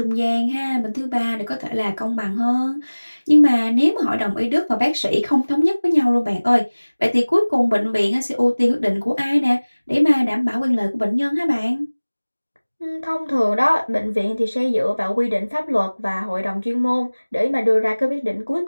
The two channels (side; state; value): both; inverted; correlation -1.00